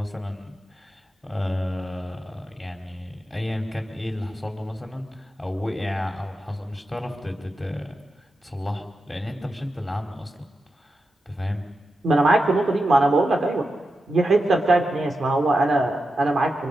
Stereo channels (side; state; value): both; normal; correlation 0.89